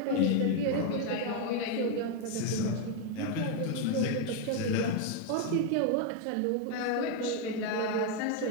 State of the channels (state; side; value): different; both; correlation 0.01